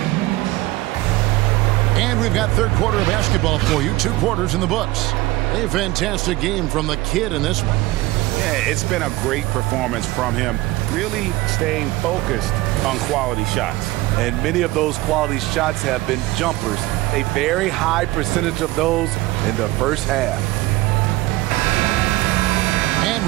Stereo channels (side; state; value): left; quieter; 18.9 dB